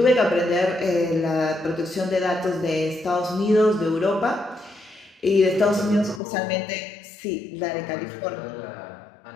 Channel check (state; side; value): drops out; right; at 6.2 s